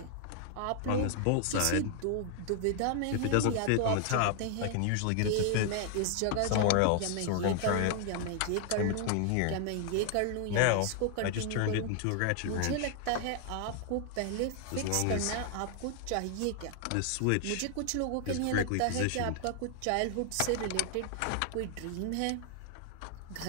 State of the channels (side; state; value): both; different; correlation 0.00